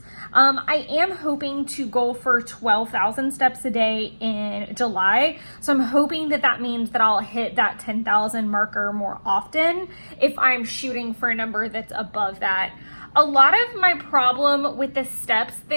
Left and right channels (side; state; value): both; inverted; correlation -1.00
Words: I am hoping to go for 12,000 steps a day in July. So I'm hoping that that means that I'll hit that 10,000 marker more often if I'm shooting for a number that's above that. A lot of my problem with the steps